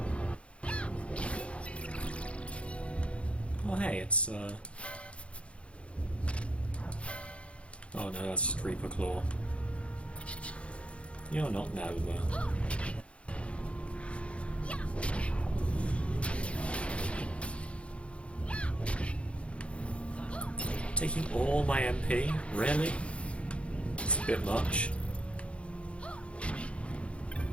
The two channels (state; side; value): late; right; 0.061 ms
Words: Oh hey, it's oh no, that's just Reaper Claw. You're not Nova. Taking all my MP? Really? It's a bit much.